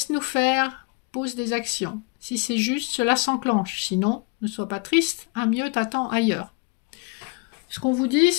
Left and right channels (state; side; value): quieter; right; 31.0 dB